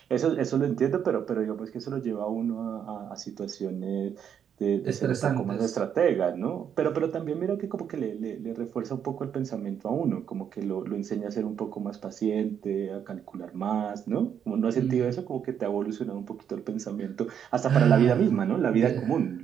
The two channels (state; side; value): quieter; left; 8.4 dB